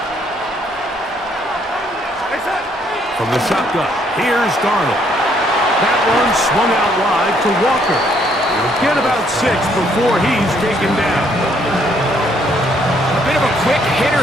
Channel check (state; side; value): normal; both; correlation 0.68